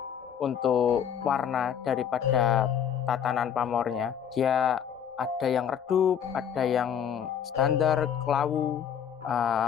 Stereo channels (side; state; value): right; quieter; 8.5 dB